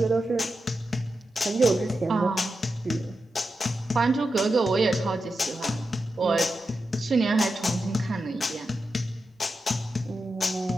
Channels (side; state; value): both; normal; correlation 0.89